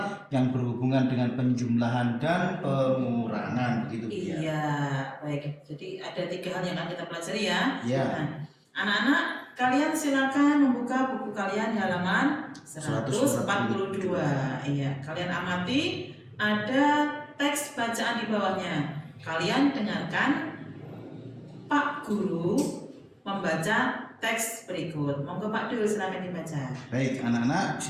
yang berhubungan dengan penjumlahan dan pengurangan. Begitu, Bu, ya? Iya, baik. Jadi ada 3 hal yang akan kita pelajari ya. Iya. Nah, anak-anak, kalian silakan membuka buku kalian di halaman 142. Iya, kalian amati ada teks bacaan di bawahnya. Kalian dengarkan Pak Guru membaca teks berikut. Monggo Pak Dul, silakan dibaca. Baik, anak-anak,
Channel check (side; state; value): both; identical; correlation 1.00